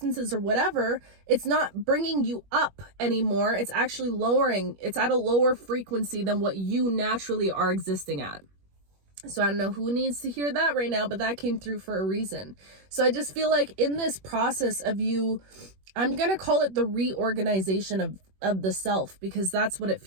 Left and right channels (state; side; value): late; left; 21 ms